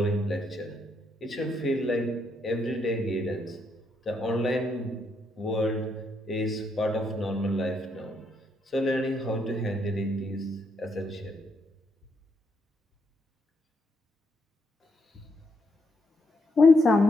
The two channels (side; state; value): both; normal; correlation 0.76